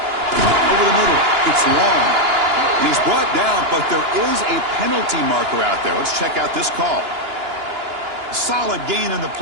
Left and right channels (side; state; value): left; late; 2.9 ms